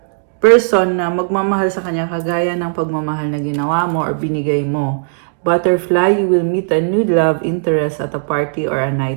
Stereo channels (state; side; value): silent; left; digital silence